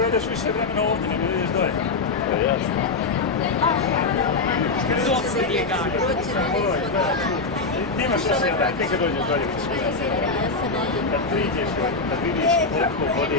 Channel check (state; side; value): quieter; right; 3.9 dB